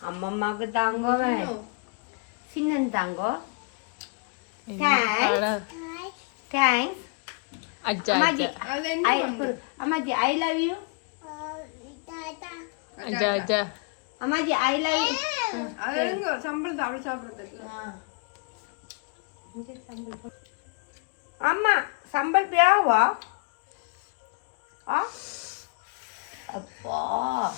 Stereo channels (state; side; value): quieter; right; 31.5 dB